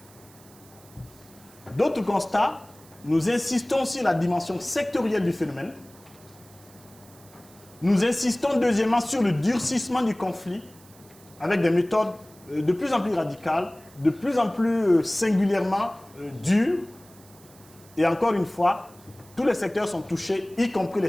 D'autres constats, nous insistons sur la dimension sectorielle du phénomène. Nous insistons deuxièmement sur le durcissement du conflit avec des méthodes de plus en plus radicales, de plus en plus singulièrement dures. Et encore une fois, tous les secteurs sont touchés, y compris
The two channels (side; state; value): right; noise; hiss, 25 dB below the sound